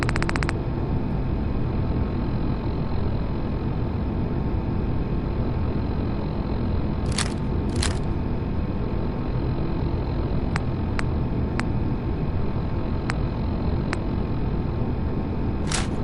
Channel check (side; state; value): both; identical; correlation 1.00